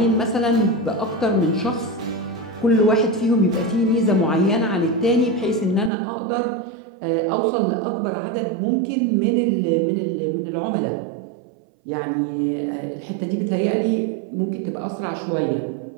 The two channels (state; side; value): drops out; left; at 5.9 s